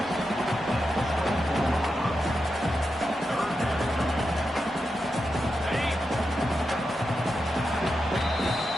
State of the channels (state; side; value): normal; both; correlation 0.88